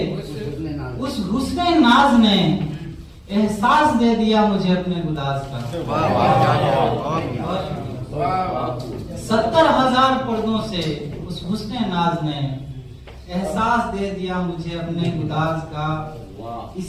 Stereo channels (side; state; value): both; identical; correlation 1.00